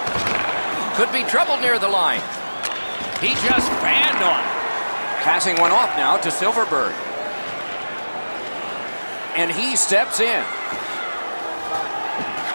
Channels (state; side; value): inverted; both; correlation -1.00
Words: Could be trouble near the line. He just fanned on it. Passing one off now to Silverberg. And he steps in.